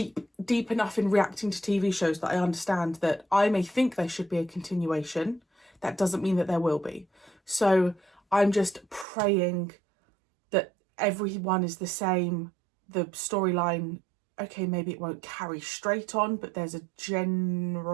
enough in reacting to TV shows that I understand that I may think there should be a continuation. That doesn't mean that there will be. So I'm just praying that everyone is the same. The storyline, okay, maybe it won't carry straight on, but there's a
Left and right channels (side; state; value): left; drops out; at 9.1 s